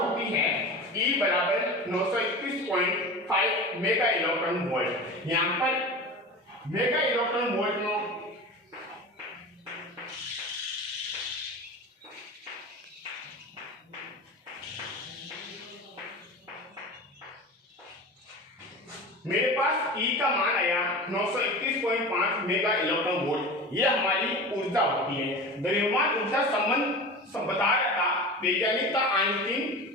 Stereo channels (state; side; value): normal; both; correlation 0.32